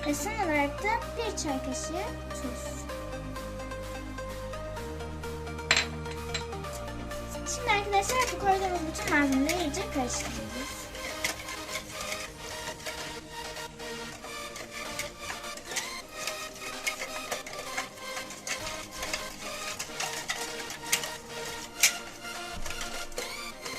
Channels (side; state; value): both; identical; correlation 1.00